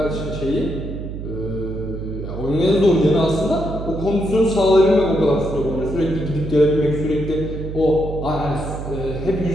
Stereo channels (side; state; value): right; noise; hum, 7 dB below the sound